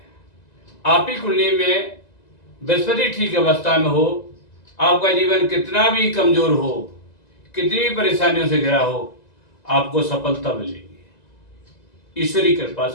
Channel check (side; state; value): right; late; 1.9 ms